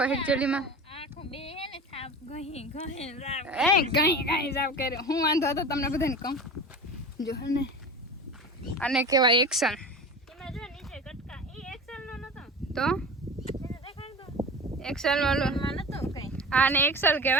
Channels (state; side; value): normal; both; correlation 0.33